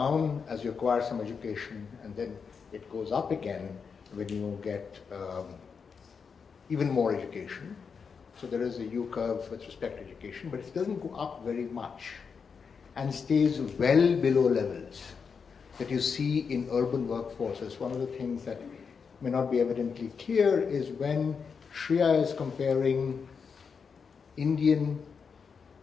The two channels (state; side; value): quieter; right; 5.9 dB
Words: as you acquire some education, and then it goes up again when you get even more education. So there is a U-curve with respect to education, but it doesn't go up very much and stays well below levels that you see in urban workforces. One of the things that may not be evidently clear is when Shreya is comparing Indian